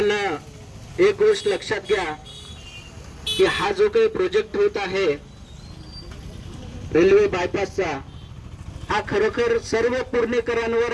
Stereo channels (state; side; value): identical; both; correlation 1.00